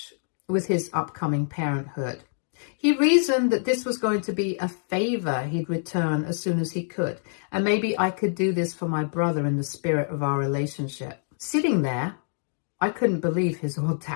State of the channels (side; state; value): right; silent; digital silence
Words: with his upcoming parenthood. He reasoned that this was going to be a favor he'd return as soon as he could, and maybe I could do this for my brother in the spirit of our relationship. Sitting there, I couldn't believe his